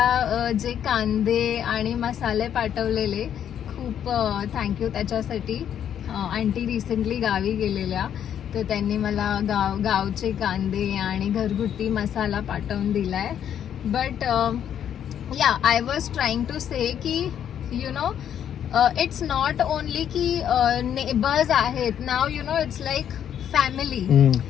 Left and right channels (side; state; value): right; quieter; 9.5 dB